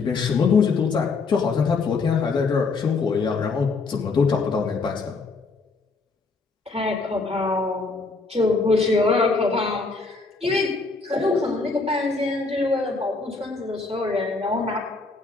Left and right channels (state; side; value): quieter; right; 4.1 dB